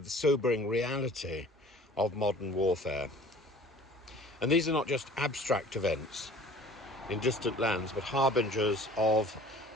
the sobering reality of modern warfare. And these are not just abstract events in distant lands, but harbingers of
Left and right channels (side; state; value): both; normal; correlation 0.48